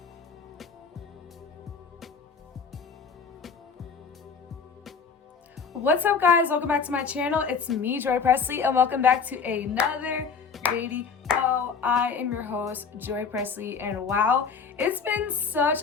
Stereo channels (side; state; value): right; quieter; 5.7 dB